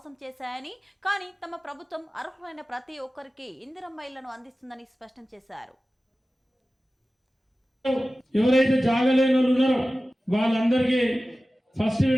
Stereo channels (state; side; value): normal; both; correlation 0.96